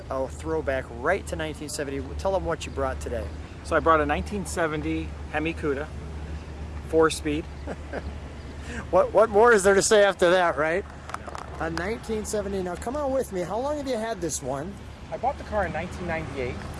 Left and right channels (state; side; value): identical; both; correlation 1.00